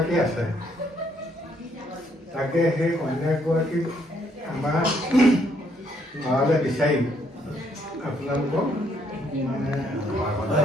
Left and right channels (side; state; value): both; normal; correlation 0.70